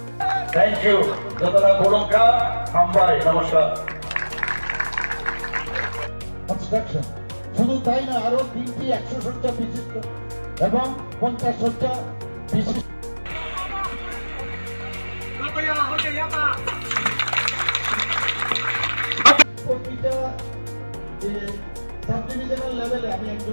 থ্যাংক ইউ যতটা গোলকা হামবাই নমস্কার। কনস্ট্রাকশন শুধু তাই না, আরো 3টি 100 শয্যা বিশিষ্ট এবং 50 শয্যা বিশিষ্ট প্রতিটা সাব ডিভিশনাল লেভেলে আমি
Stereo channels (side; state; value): both; inverted; correlation -1.00